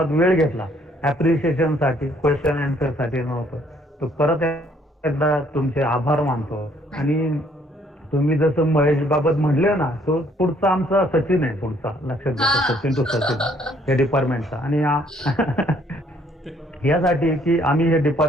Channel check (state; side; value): normal; both; correlation 0.64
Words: वेळ घेतला ॲप्रिशिएशनसाठी, क्वेश्चन आन्सरसाठी नव्हतं. तर परत एकदा तुमचे आभार मानतो. आणि तुम्ही जसं महेश बाबत म्हणले ना, तो पुढचा आमचा सचिन आहे, पुढचा लक्षात घ्या, सचिन टू सचिन या डिपार्टमेंटचा. आणि यासाठी की आम्ही हे